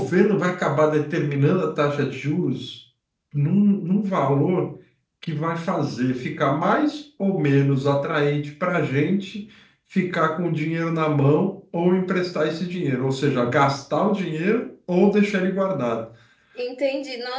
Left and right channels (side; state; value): both; identical; correlation 1.00